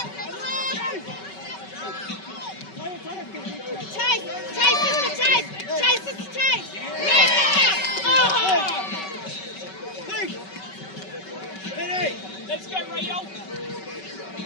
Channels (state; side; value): late; right; 5.3 ms